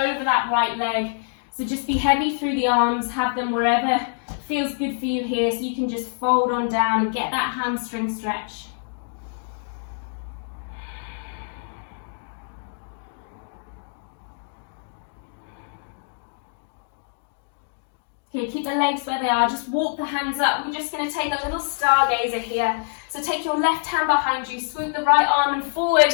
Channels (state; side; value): silent; right; digital silence